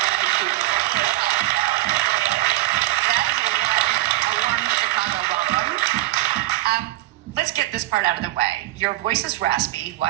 Let's get this part out of the way. Your voice is raspy. Why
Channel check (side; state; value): left; quieter; 17.0 dB